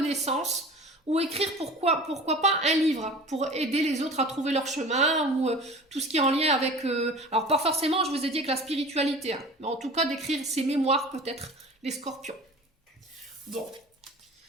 ou écrire pourquoi pas un livre pour aider les autres à trouver leur chemin, ou tout ce qui est en lien avec... alors pas forcément, je vous ai dit, avec la spiritualité, hein, mais en tout cas d'écrire ses mémoires peut-être, les scorpions. Bon.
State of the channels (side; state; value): both; normal; correlation 0.40